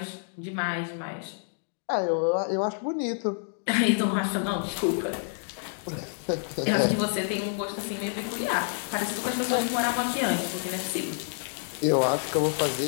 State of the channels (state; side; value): silent; right; digital silence